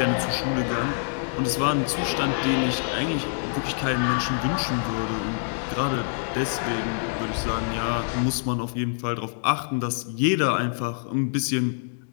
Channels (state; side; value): silent; right; digital silence